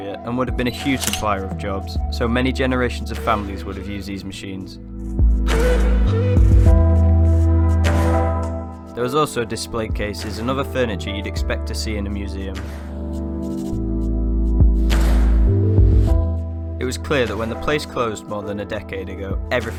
and would have been a huge supplier of jobs, so many generations of families would have used these machines. There was also display cases and other furniture you'd expect to see in a museum. It was clear that when the place closed more than a decade ago,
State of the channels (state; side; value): identical; both; correlation 1.00